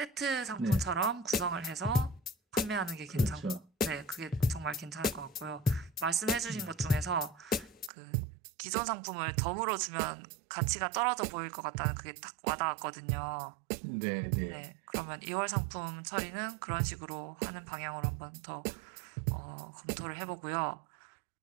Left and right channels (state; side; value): drops out; left; at 7.9 s